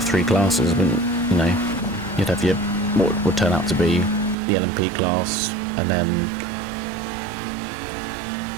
3 classes, but you know, you'd have your what would turn out to be the LMP class, and then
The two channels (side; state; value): left; drops out; at 4.4 s